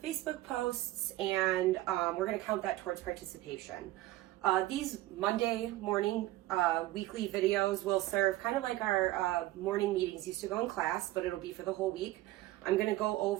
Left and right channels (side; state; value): left; quieter; 16.8 dB